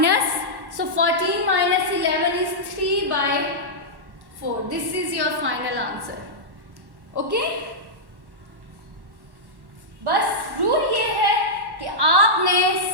so 14 minus 11 is 3 by 4. This is your final answer. Okay? बस rule ये है कि आपने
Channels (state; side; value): late; left; 1.1 ms